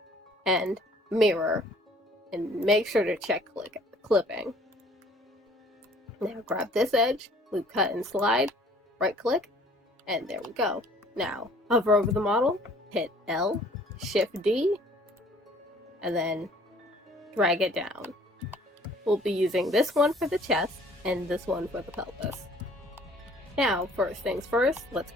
and mirror, and make sure to check clipping. Now grab this edge, loop cut and slide, right click, and there we go. Now hover over the model, hit L, shift D, and then drag it down. We'll be using this one for the chest and this one for the pelvis. Now, first things first, let's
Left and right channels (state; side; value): normal; both; correlation 0.56